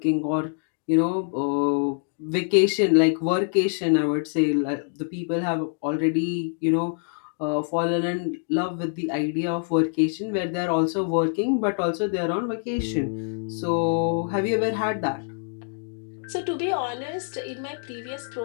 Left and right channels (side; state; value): right; silent; 62 dB below the other